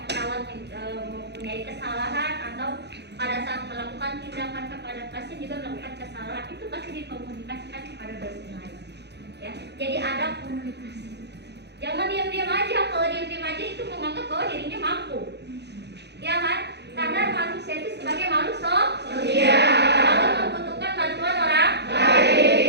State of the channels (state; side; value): late; left; 0.49 ms